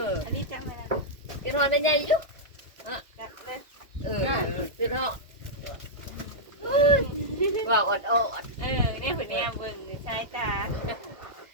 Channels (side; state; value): left; late; 1.6 ms